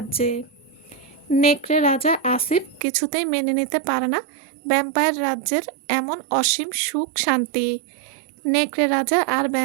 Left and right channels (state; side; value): drops out; left; at 2.8 s